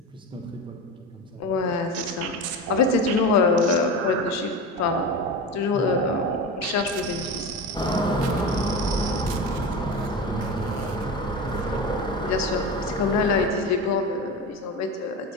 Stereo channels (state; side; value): normal; both; correlation 0.25